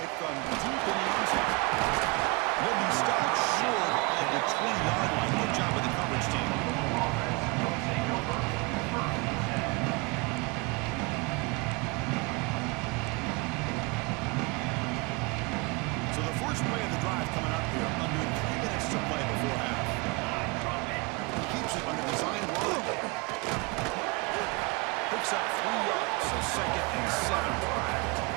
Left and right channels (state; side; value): quieter; left; 27.8 dB